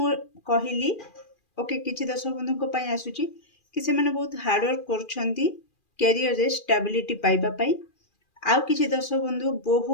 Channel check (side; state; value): right; late; 2.4 ms